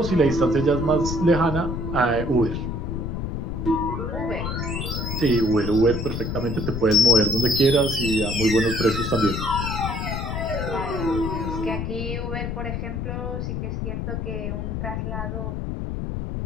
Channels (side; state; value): left; noise; rumble, 3 dB below the sound